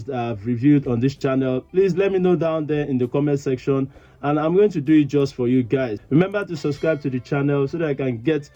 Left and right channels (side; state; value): both; identical; correlation 1.00